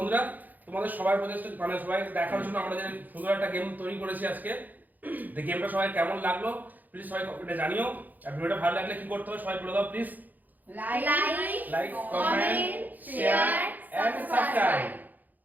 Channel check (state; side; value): late; left; 0.083 ms